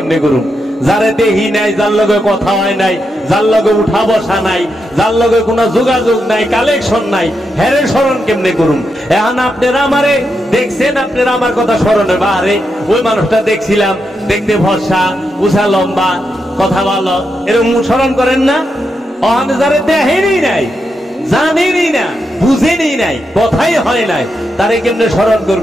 করুন? যারে দেহি নাই, যার লগে কথা হয় নাই, যার লগে উঠা বসা নাই, যার লগে কোনো যোগাযোগ নাই, কালেকশন নাই, হেরে স্মরণ কেমনে করুন? এখন আপনারা আমারে দেখছেন, আপনারা আমার কথা স্মরণে বাহারে ওই মানুষটা দেখছিলাম, দেখতে ভরসা, উষা লম্বা, কথা ভালো, এরকম স্মরণ করেন না? অহনে যারে দেখেনই নাই, জানেনই না, বুঝেনই নাই, কথাই হয় নাই, তারে কেমনে স্মরণ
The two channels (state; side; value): normal; both; correlation 0.84